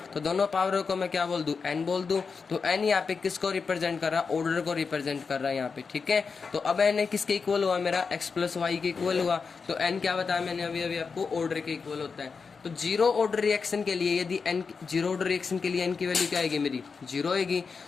तो दोनों पावरों को मैं क्या बोल दूं, n बोल दूं। तो n यहाँ पे किसको रिप्रेजेंट कर रहा है, ऑर्डर को रिप्रेजेंट कर रहा है यहाँ पे। ठीक है, तो अब n किसके इक्वल हुआ मेरा, x + y के इक्वल हुआ। तो n क्या बताया मैंने अभी आपको, ऑर्डर के इक्वल होता है। तो 0 ऑर्डर रिएक्शन के लिए यदि n 0 ऑर्डर रिएक्शन के लिए n की वैल्यू क्या आएगी मेरी, 0 आएगी।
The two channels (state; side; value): quieter; right; 5.2 dB